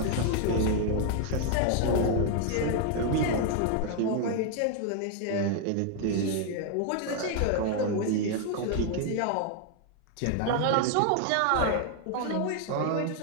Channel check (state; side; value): different; both; correlation 0.00